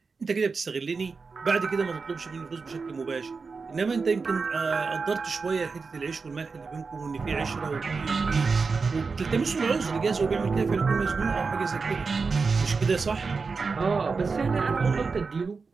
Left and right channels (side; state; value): left; quieter; 4.6 dB